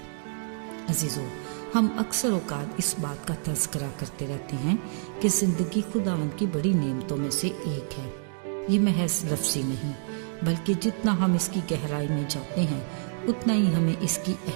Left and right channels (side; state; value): left; silent; digital silence